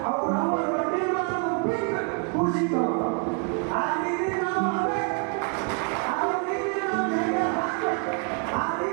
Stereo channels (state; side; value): quieter; left; 36.8 dB